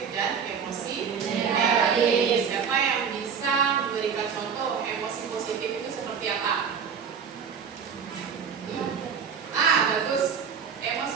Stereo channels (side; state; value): left; quieter; 6.8 dB